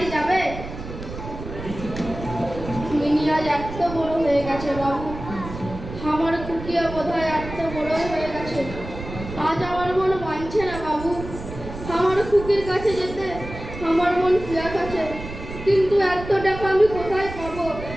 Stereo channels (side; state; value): right; noise; rumble, 11 dB below the sound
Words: যাবে? মিনি আজ এত বড় হয়ে গেছে বাবু, আমার খুকিও বোধহয় এত বড় হয়ে গেছে। আজ আমার মন মানছে না বাবু, আমার খুকির কাছে যেতে আমার মন পিয়াস আছে, কিন্তু এত টাকা আমি কোথায় পাবো?